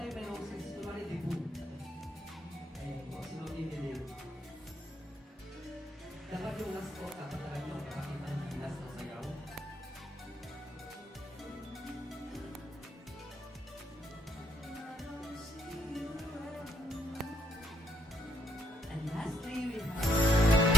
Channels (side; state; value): both; normal; correlation 0.73